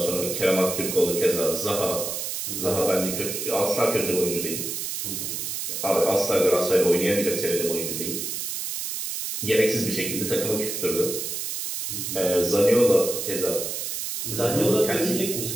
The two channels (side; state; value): right; noise; hiss, 4 dB below the sound